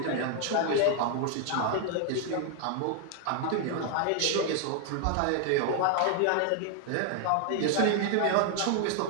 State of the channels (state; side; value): different; both; correlation 0.00